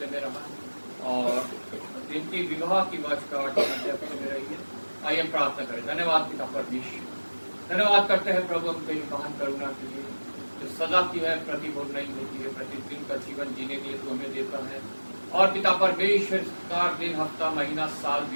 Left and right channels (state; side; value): inverted; both; correlation -1.00